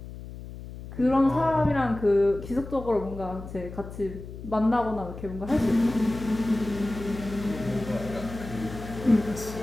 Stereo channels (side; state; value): left; noise; hum, 12 dB below the sound